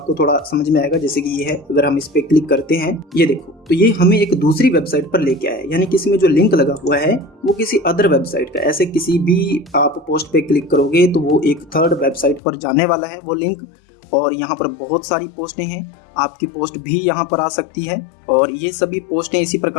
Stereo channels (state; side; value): drops out; right; at 12.4 s